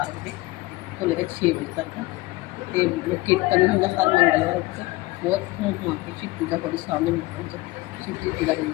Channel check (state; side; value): quieter; right; 20.2 dB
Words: बजे तो लेकर 6 बजे तक। तो कीर्तन होंगे हर मंगलवार को, बहुत घूम घुमा के शिव पूजा बड़ी सामने मिलता है, शिव जी पूजा